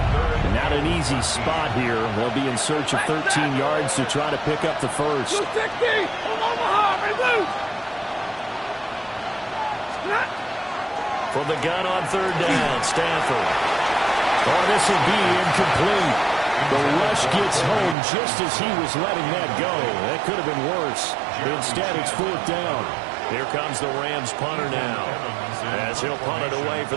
Not an easy spot here. They'll be in search of 13 yards to try to pick up the first. 260 on Omaha, reloose. From the gun on third down, Stanford. Oh, this will be incomplete. The rush gets home just as he was letting that go. That could have been worse. Instead, it's 4th down. Here comes the Rams punter now, as he'll punt it away for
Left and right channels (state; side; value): drops out; left; at 17.9 s